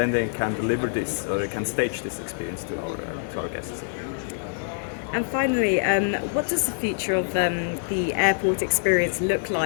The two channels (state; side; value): silent; right; digital silence